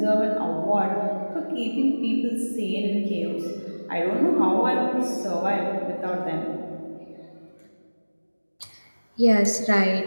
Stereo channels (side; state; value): both; inverted; correlation -1.00